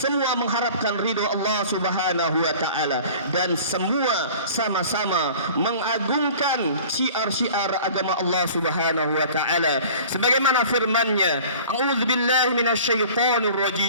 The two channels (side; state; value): both; inverted; correlation -0.44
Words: mengharapkan ridho Allah Subhanahu wa taala, dan semua sama-sama mengagungkan syiar-syiar agama Allah Subhanahu wa taala sebagaimana firman-Nya, a'udzubillahi minasyaitonir